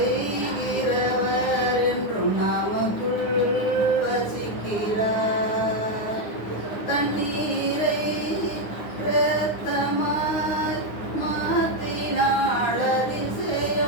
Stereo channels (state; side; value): late; right; 9.6 ms